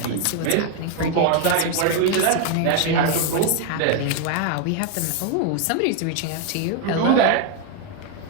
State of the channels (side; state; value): both; different; correlation 0.01